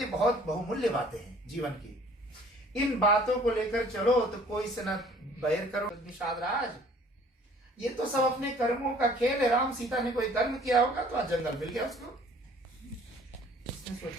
बहुत बहुमूल्य बातें हैं जीवन की. इन बातों को लेकर चलो तो कोई से न बैर करो. निषाद राज, ये तो सब अपने कर्मों का खेल है. राम सीता ने कोई कर्म किया होगा तो आज जंगल मिल गया उसको. उसने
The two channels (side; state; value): both; normal; correlation 0.54